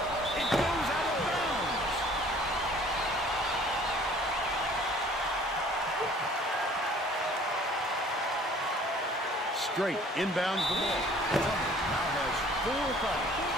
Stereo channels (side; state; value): both; normal; correlation 0.53